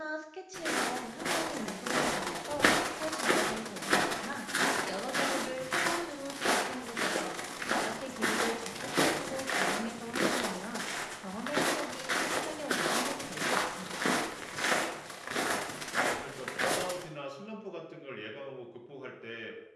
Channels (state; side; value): identical; both; correlation 1.00